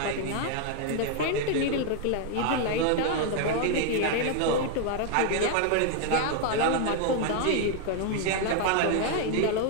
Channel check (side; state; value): both; different; correlation 0.00